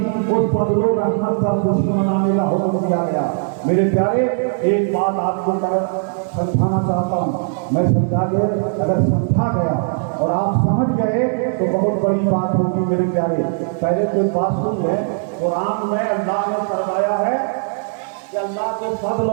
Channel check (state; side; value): silent; left; 67 dB below the other